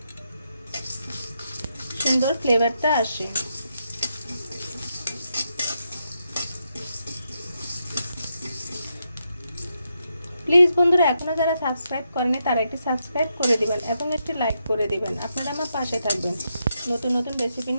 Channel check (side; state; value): both; inverted; correlation -0.82